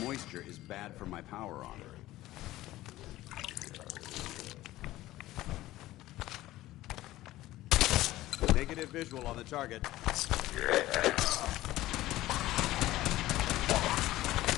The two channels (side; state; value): right; quieter; 16.2 dB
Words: moisture is bad for my power armor. Negative visual on the target. Stay